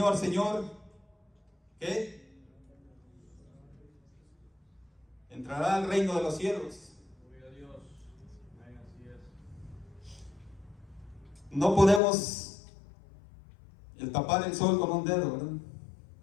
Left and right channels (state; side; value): drops out; right; at 12.0 s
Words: Señor, ¿qué? Entrará al reino de los cielos. Gloria a Dios. Amén, así es. No podemos tapar el sol con un dedo, ¿verdad?